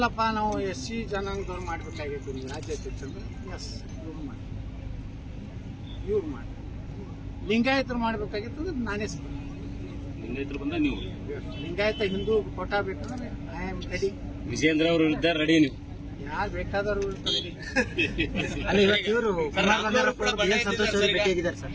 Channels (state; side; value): identical; both; correlation 1.00